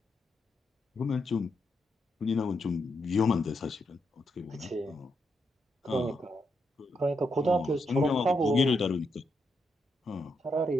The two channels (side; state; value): both; normal; correlation 0.81